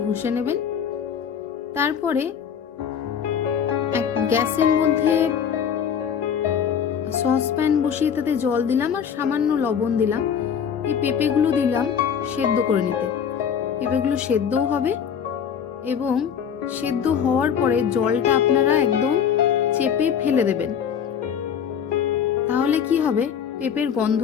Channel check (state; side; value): quieter; right; 7.8 dB